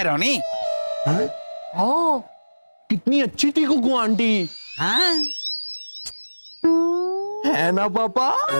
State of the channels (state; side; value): inverted; both; correlation -1.00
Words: रोनी। हाँ, कितनी अच्छी थी कुकू आंटी। हाँ? है ना पापा?